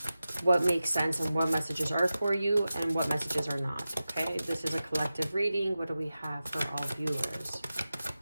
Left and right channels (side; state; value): both; inverted; correlation -0.94